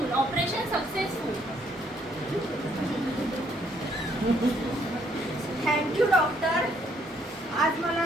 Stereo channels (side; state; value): both; normal; correlation 0.69